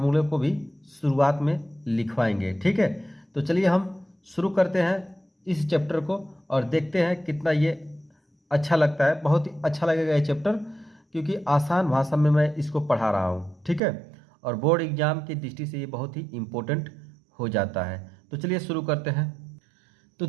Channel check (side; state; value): left; drops out; at 13.8 s